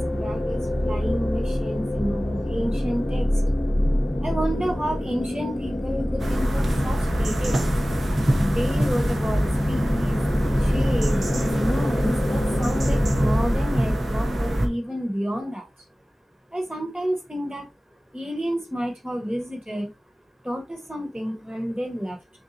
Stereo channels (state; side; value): normal; both; correlation 0.97